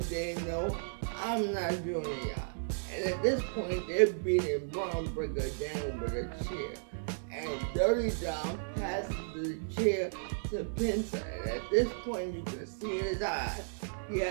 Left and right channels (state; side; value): silent; left; digital silence